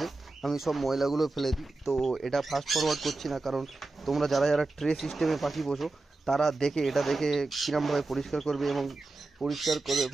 আমি সব ময়লাগুলো ফেলে দিই। তো এটা ফাস্ট ফরওয়ার্ড করছি না, কারণ তোমরা যারা ট্রে সিস্টেমে পাখি বসো তারা এটা দেখে কীরমভাবে পরিষ্কার করবে এবং পরিষ্কার করে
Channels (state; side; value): quieter; left; 3.3 dB